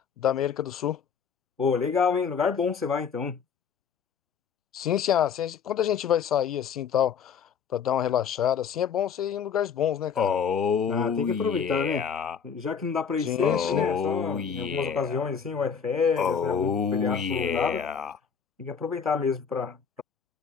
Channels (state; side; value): quieter; right; 6.9 dB